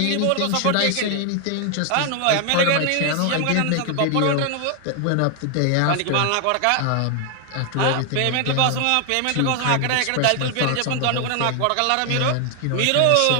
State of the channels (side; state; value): both; different; correlation 0.00